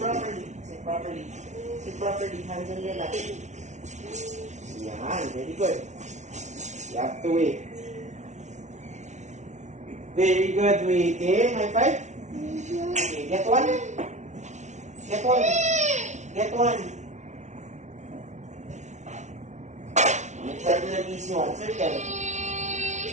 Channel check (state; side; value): late; left; 0.33 ms